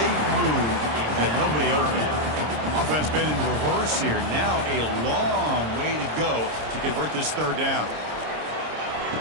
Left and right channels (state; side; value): late; left; 26 ms